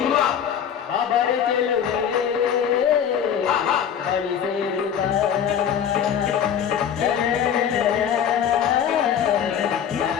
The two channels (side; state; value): right; quieter; 8.6 dB